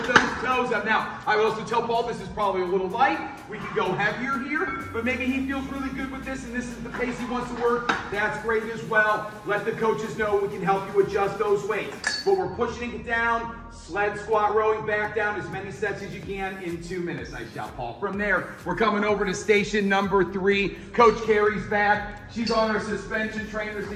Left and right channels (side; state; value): both; identical; correlation 1.00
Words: those toes up. Now, I would also tell Paul this is probably a little light. We could go heavier here, but maybe he feels really good with this and this is the pace he wants to work. That's great as well. Let the coaches know we can help you adjust those weights. But we're pushing it down, sled squat, rowing back down as many sets as you can in 2 minutes. Nice job, Paul. From there, we're coming over to station number 3. Coach Carey's back. She's on our suspension trainers